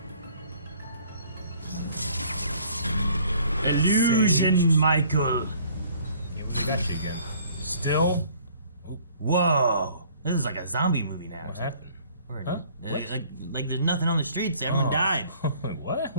Illusion, Sage. Michael. Yeah, we got you again. Still? Whoa. This is like a zombie movie now. What happened? Or, Huh? What? Like there's nothing on the streets. Everyone died. What?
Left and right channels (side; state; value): both; inverted; correlation -0.56